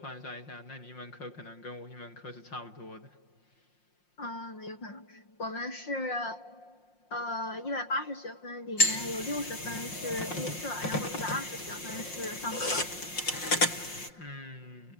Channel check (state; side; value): late; right; 5.6 ms